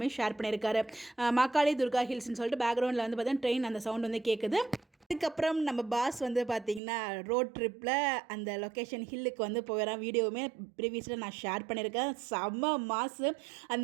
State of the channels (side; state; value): left; drops out; at 6.8 s